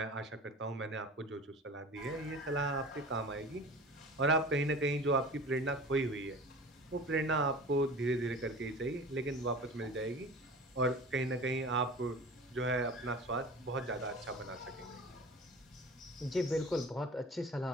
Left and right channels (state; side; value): normal; both; correlation 0.39